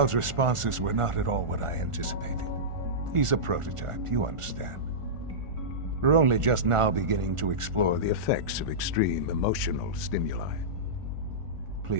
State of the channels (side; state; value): left; late; 1.4 ms